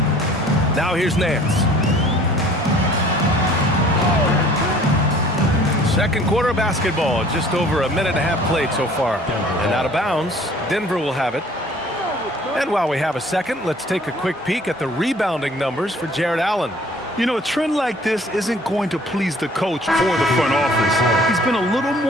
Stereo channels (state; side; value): normal; both; correlation 0.53